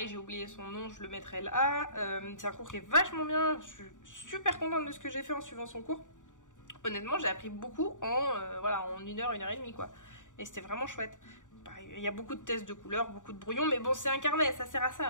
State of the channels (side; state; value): right; late; 0.86 ms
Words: j'ai oublié son nom, je le mettrai là. C'est un cours qui est vachement bien, je suis super contente de ce que j'ai fait en suivant son cours. Honnêtement j'ai appris beaucoup voilà, en 1 heure, 1 heure et demie quoi. Et c'était vraiment chouette. Pareil, il y a beaucoup de tests de couleurs, beaucoup de brouillons, mais bon c'est un carnet, ça sert à